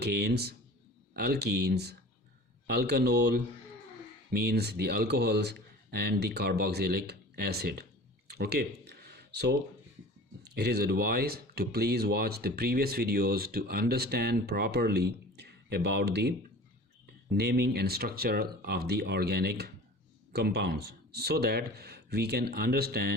alkenes, alkanol means the alcohols, and the carboxylic acid. Okay, so it is advised to please watch the previous videos to understand properly about the naming and structure of the organic compounds, so that we can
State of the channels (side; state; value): both; normal; correlation 0.41